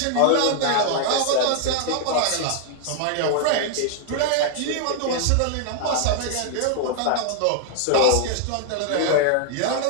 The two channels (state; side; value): different; both; correlation 0.00